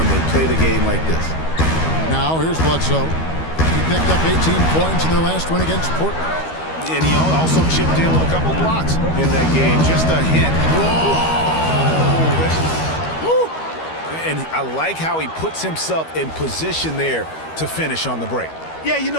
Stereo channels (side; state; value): right; late; 13 ms